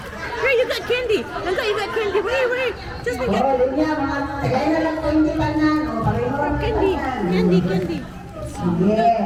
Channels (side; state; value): both; identical; correlation 1.00